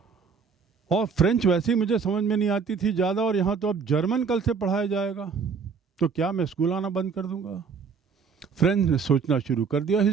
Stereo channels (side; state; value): left; quieter; 5.7 dB